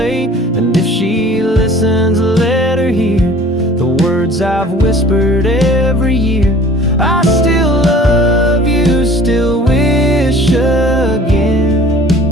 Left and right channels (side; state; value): both; normal; correlation 0.48